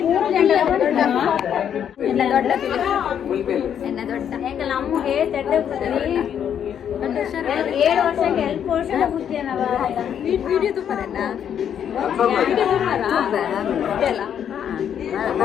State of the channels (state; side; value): quieter; right; 8.9 dB